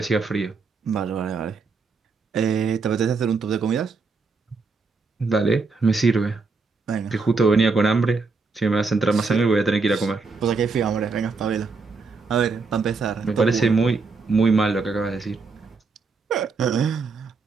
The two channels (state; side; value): quieter; left; 4.3 dB